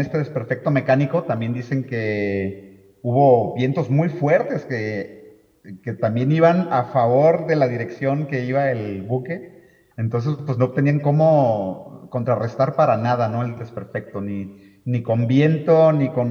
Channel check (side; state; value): both; identical; correlation 1.00